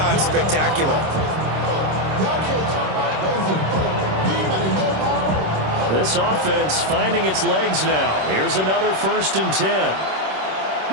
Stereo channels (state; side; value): late; left; 26 ms